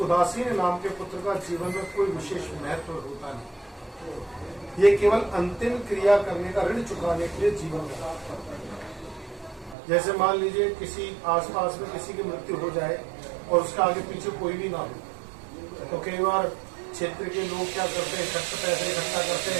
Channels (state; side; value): drops out; left; at 9.8 s